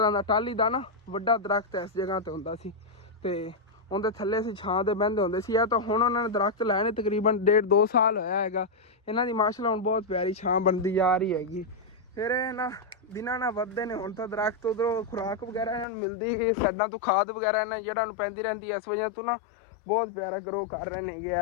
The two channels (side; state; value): right; drops out; at 15.9 s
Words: का टाली का ना वड्डा दरख्त इस जगह ते हुंदा सी ते उनके थल्ले असीं छां दे बहिंदे हुंदे सी। तो हुण उन्होंने दरख्त लाए ने तकरीबन 1.5-2 साल होया हैगा। इन्हां दी माशाअल्लाह हुण बहुत प्यारी छां बनदी जा रही हैगी। फिर ना दिनां ना वधदे ने हुण तां दरख्त उधरों खुराक वगैरह इन्हां नूं मिलदी साइडां तो खाद वगैरह इन्हां जेह्ड़ा नूं पैंदी रहिंदी इस वजह तो ना बहुत प्यारा ग्रो कर रहे ने ये